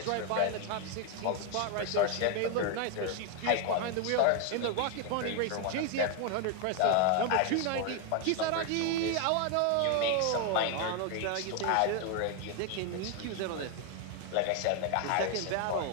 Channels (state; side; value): different; both; correlation 0.01